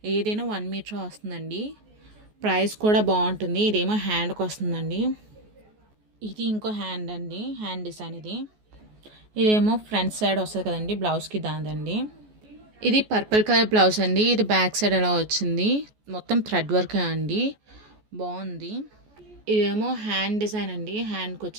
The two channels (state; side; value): late; left; 14 ms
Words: ఏదైనా 1 మీటర్ వస్తుందండి. ప్రైస్ కూడా బాగుంటుంది. ఇదేమో హ్యాండ్కి వస్తుందండి. ఇది ఇంకో హ్యాండ్ అండి, హ్యాండ్ డిజైన్ ఇది. ఇదేమో ఫ్రంట్ సైడ్ వస్తుంది కదండి బ్లౌజ్కి, దాందండి. ఇది పర్పుల్ కలర్ బ్లౌజ్ అండి. ఇది బ్యాక్ సైడ్ ఎలా వచ్చింది, మొత్తం థ్రెడ్ వర్క్ అండి, బాగుంది. ఇదేమో హ్యాండ్ డిజైన్ అండి, హ్యాండ్కి